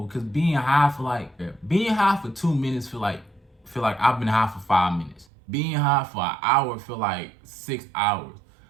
Cause being high for 2 minutes feel like I've been high for 5 minutes. Being high for an hour feel like 6 hours.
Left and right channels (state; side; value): drops out; left; at 5.2 s